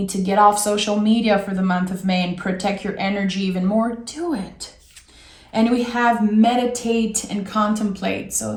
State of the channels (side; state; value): both; identical; correlation 1.00